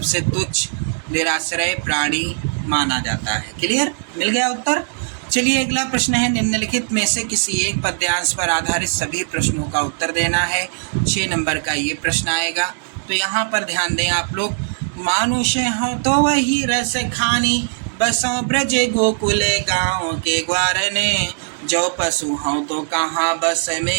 तुच्छ निराश्रय प्राणी माना जाता है। क्लियर? मिल गया उत्तर। चलिए, अगला प्रश्न है, निम्नलिखित में से किसी एक पद्यांश पर आधारित सभी प्रश्नों का उत्तर देना है। 6 नंबर का ये प्रश्न आएगा। तो यहाँ पर ध्यान दें आप लोग। मानुष हो तो वही रस खानी, बसों ब्रज गोकुल गाँव के ग्वारने, जो पशु हो तो कहाँ बस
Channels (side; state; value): left; silent; digital silence